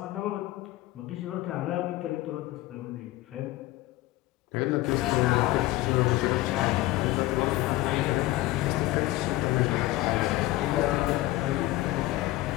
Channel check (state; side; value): quieter; right; 17.5 dB